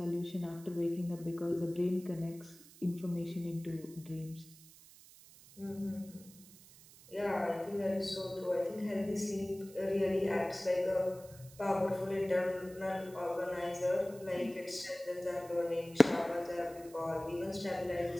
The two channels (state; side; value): noise; right; hiss, 21 dB below the sound